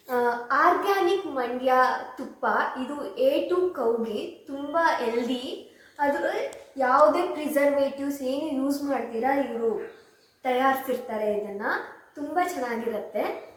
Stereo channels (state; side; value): identical; both; correlation 1.00